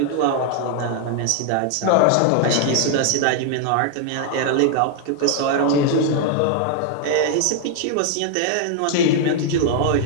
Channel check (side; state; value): both; different; correlation 0.00